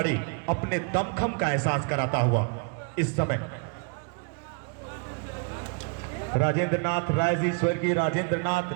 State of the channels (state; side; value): quieter; left; 34.3 dB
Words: अपने दमखम का एहसास कराता हुआ इस समय। राजेंद्र नाथ राय जी, स्वर्गीय राजेंद्र नाथ